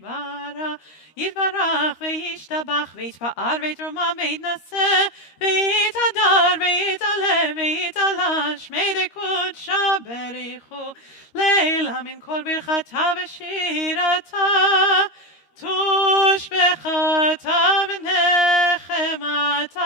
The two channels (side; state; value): right; late; 13 ms